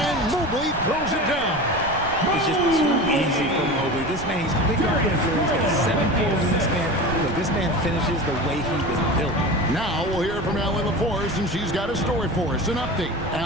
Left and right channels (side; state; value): right; noise; rumble, 13 dB below the sound